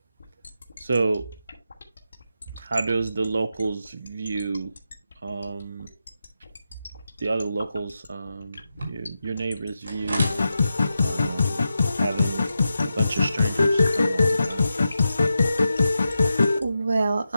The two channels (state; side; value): inverted; both; correlation -0.89